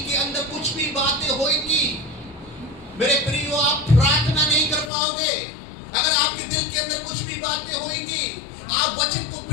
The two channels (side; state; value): right; drops out; at 4.9 s